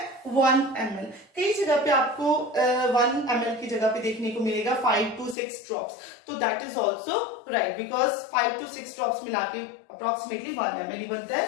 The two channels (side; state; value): right; drops out; at 5.4 s